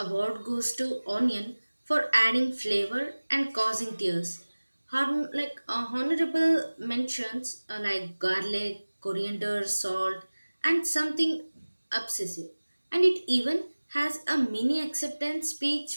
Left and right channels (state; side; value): inverted; both; correlation -1.00